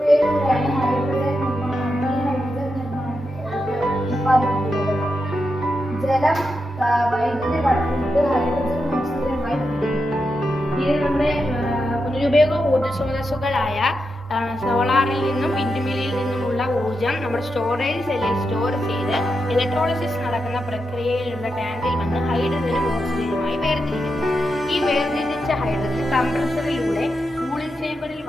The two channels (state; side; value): normal; both; correlation 0.86